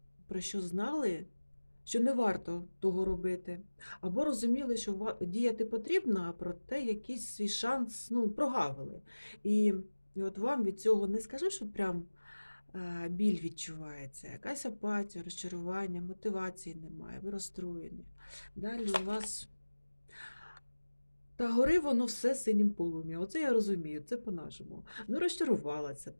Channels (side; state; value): both; inverted; correlation -1.00